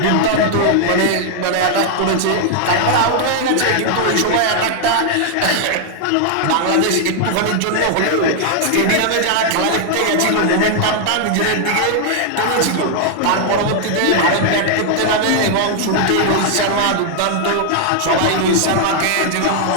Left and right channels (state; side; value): different; both; correlation 0.00